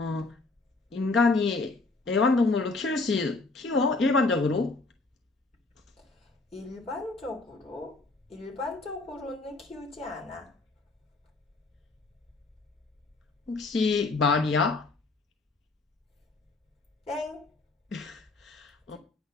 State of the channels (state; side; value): quieter; right; 3.5 dB